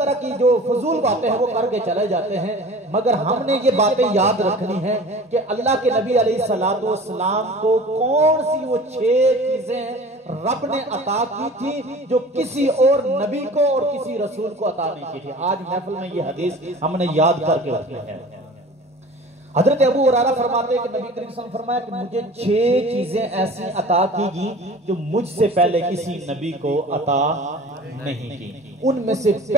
کی جو فضول باتیں ہیں وہ کر کے چلے جاتے ہیں۔ مگر ہم نے یہ باتیں یاد رکھنی ہیں کہ اللہ کے نبی علیہ السلام کو کون سی وہ 6 چیزیں رب نے عطا کی تھی جو کسی اور نبی کو اور کسی رسول کو عطا نہیں کی تھی۔ آج محفل میں یہ حدیث ہم نے یاد کر کے رکھنی ہے۔ حضرت ابو ہریرہ فرماتے ہیں کہ نبی کریم صلی اللہ علیہ وسلم نے فرمایا کہ مجھے 6 چیزیں ایسی عطا کی گئی جو مجھ سے پہلے کسی نبی کو عطا نہیں کی۔ ان میں سے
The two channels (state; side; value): normal; both; correlation 0.41